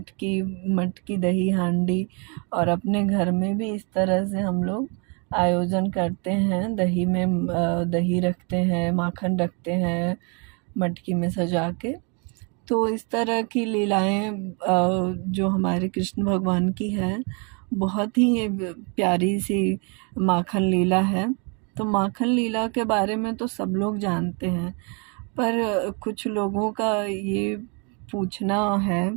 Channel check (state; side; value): quieter; left; 34.7 dB